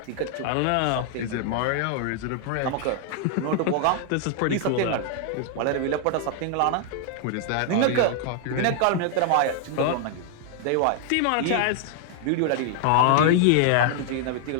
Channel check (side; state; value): both; different; correlation 0.00